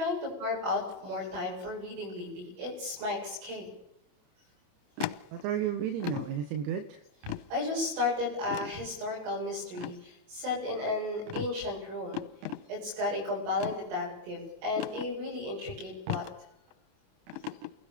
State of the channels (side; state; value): left; late; 28 ms